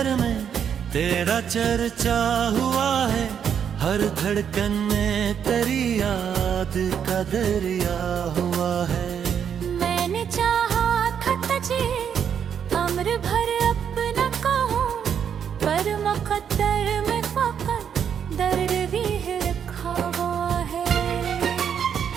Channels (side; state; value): left; quieter; 8.1 dB